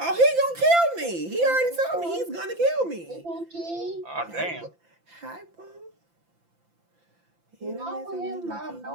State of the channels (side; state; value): left; late; 5.9 ms